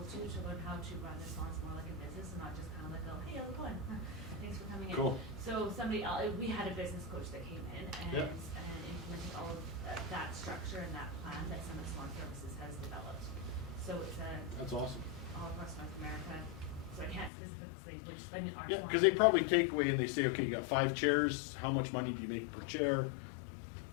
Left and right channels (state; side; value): drops out; right; at 17.3 s